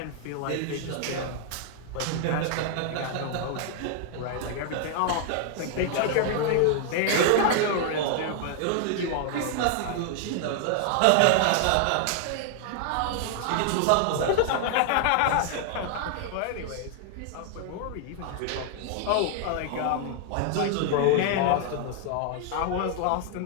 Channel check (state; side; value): different; both; correlation 0.00